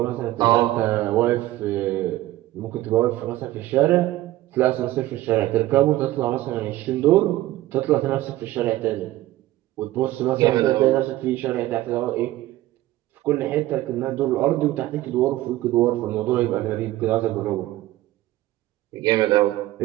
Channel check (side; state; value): left; quieter; 16.0 dB